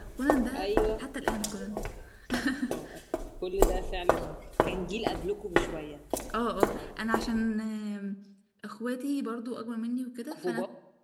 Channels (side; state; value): both; identical; correlation 1.00